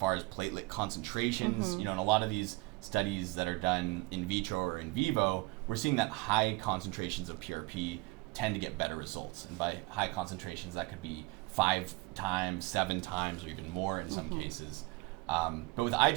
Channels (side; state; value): left; quieter; 23.7 dB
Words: as platelet concentrations, in a lot of these studies that are done in vitro or in vivo, we're seeing that high concentrations of PRP tend to get better results. And by high concentrations, that could be 5 times, 7 times, or even more in some cases. But with eye